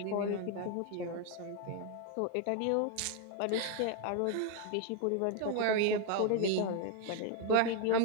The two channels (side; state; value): both; different; correlation 0.00